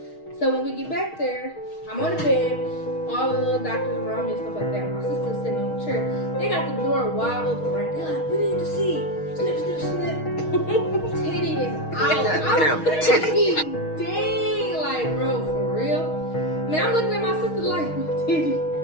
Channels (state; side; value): late; right; 6.4 ms